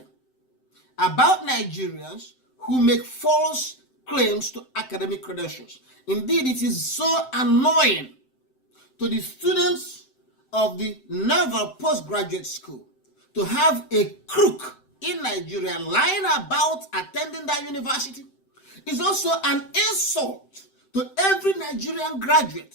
about Nigerians who make false claims to academic credentials. Indeed, it is so annoying to the students of the Naval Postgraduate School to have a crook in Nigeria lying about attending that university. It's also an insult to every Nigerian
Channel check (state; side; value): late; right; 7.8 ms